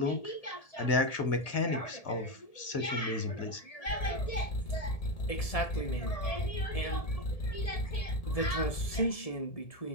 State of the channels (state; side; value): late; right; 1.7 ms